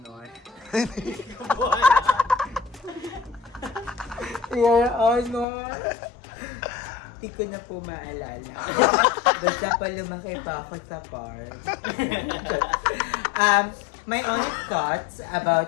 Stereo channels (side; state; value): right; drops out; at 5.5 s